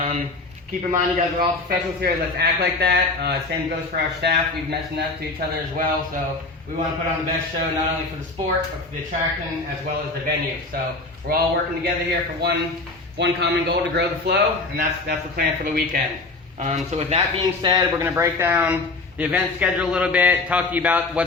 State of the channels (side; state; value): right; quieter; 3.4 dB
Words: Keep in mind you guys are all professionals here. Let's act like that. Same goes for our staff. We've mentioned that to each other as well. So we want to put on the best show, not only for the sport, but for the attraction as well as the venue. So we're all working together here for one common goal, to grow the flow, and that's the plan for the weekend. So with that being said, we're going to break down the event schedule a little bit, talk to you about